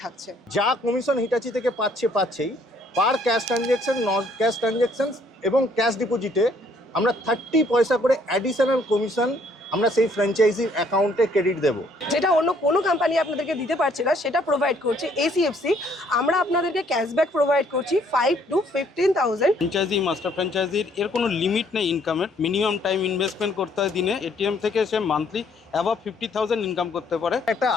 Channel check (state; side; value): normal; both; correlation 0.64